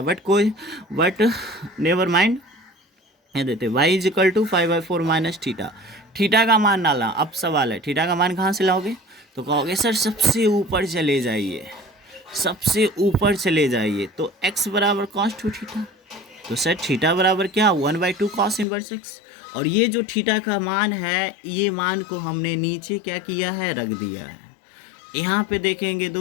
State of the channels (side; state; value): right; drops out; at 18.7 s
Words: बट नेवर माइंड, ये देते y is equal to 5/4 minus theta. Theta का मान डाला। अब सवाल है थीटा का मान कहाँ से लाओगे, तो कहोगे सर सबसे ऊपर चले जाइए, सबसे ऊपर चले जाइए, तो x बराबर कॉस टू थीटा। तो सर थीटा बराबर क्या, 1/2 कॉस इनवर्स x। और ये जो थीटा का मान है, ये मान को हमने नीचे क्या किया है, रख दिया है। यहाँ पे देखेंगे